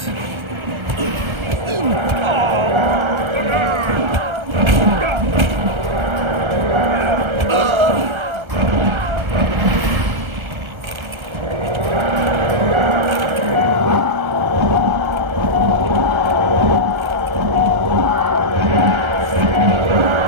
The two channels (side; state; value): left; late; 1.3 ms